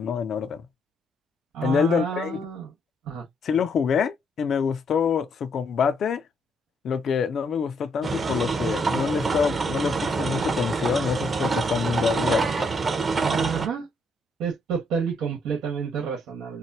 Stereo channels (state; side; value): normal; both; correlation 0.72